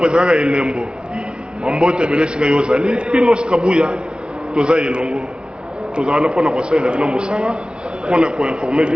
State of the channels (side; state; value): left; late; 0.053 ms